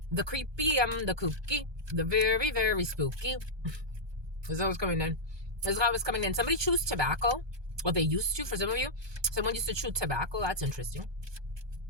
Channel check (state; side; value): late; left; 1.2 ms